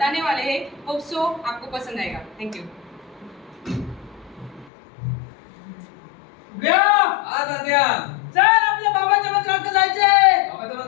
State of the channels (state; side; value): drops out; right; at 4.7 s